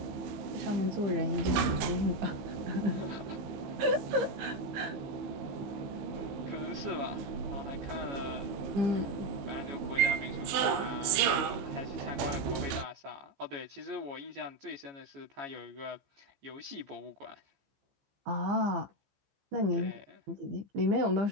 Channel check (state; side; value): late; left; 15 ms